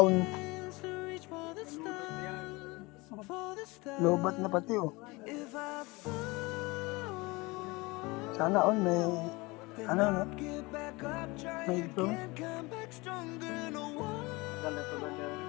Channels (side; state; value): right; quieter; 24.0 dB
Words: Hands to reach for the stars, for the stars. Lobat na pati oh. If I fall, Sana all may then no? I'll get back up, try May drone. again, come back stronger. No one,